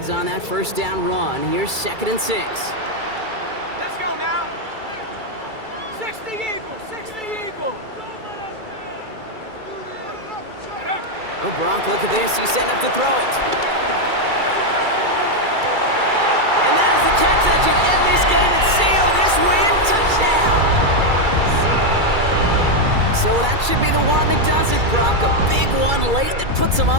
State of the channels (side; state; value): left; late; 2.3 ms